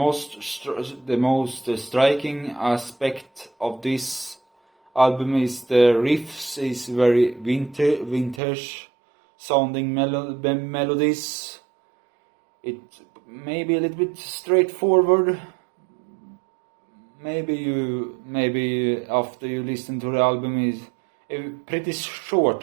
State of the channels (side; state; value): left; drops out; at 8.4 s